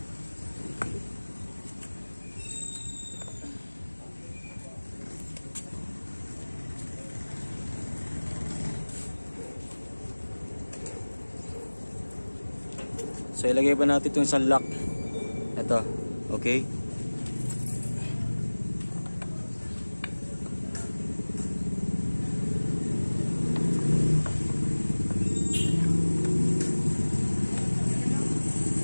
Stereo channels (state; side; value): inverted; both; correlation -1.00